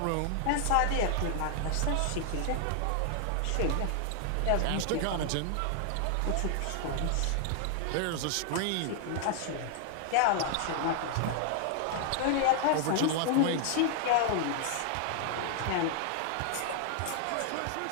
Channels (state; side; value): different; both; correlation 0.00